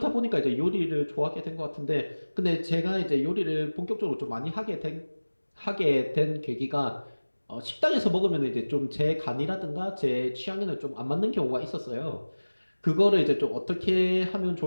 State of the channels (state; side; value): inverted; both; correlation -1.00